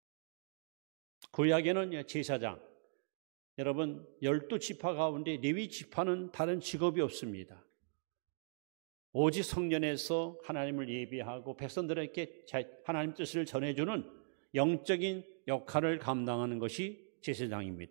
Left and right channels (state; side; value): silent; left; digital silence